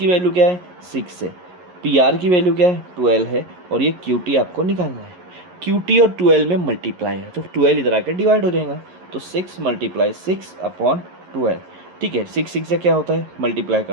वैल्यू क्या है, 6 है। PR की वैल्यू क्या है, 12 है। और ये QT आपको निकालना है। QT और 12 में मल्टीप्लाई है तो 12 इधर आकर डिवाइड हो जाएगा। तो 6 × 6/12, ठीक है। 6 6 से क्या होता है, मल्टीप्लाई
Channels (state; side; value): late; left; 11 ms